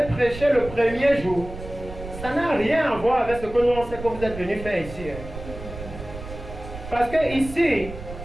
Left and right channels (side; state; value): right; noise; rumble, 12 dB below the sound